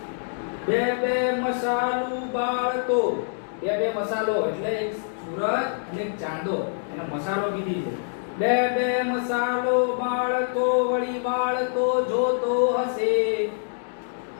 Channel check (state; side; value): silent; right; digital silence